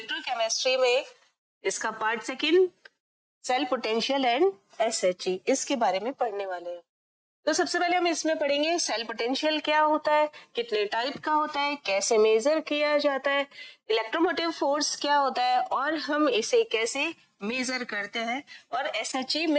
में इसका part second cell potential and SHE, इसके बारे में पढ़ने वाले हैं। तो सबसे पहले हम इसमें पढ़ेंगे सेल पोटेंशियल क्या होता है, कितने टाइप का होता है, कैसे मेजर किया जाता है, इलेक्ट्रोमोटिव फोर्स क्या होता है और हम इसे कैसे मेजर करते हैं, और SHE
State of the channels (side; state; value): both; identical; correlation 1.00